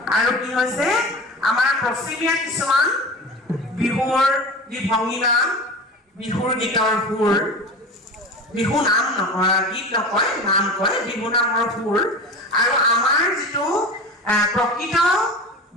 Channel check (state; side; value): normal; both; correlation 0.31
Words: আৰু কি হৈছে আমাৰ পশ্চিমীয়া কিছুমান বিহুৰ যি ভংগীমা বিহুৰ গীতৰ সুৰ বিহু নাম গীত নকয় নাম কয় বিহু নামৰ সুৰ আৰু আমাৰ যিটো প্ৰকৃত